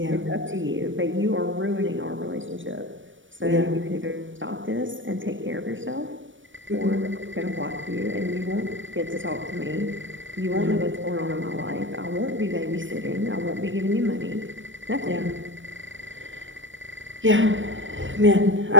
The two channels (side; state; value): left; late; 0.56 ms